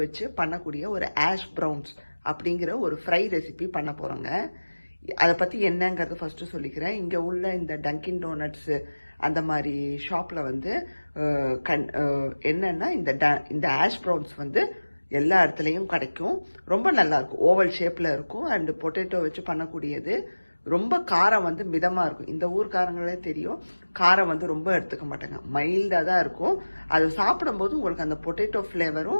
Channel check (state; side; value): inverted; both; correlation -1.00